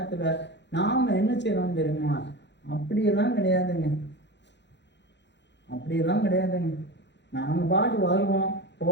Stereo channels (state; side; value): late; right; 0.52 ms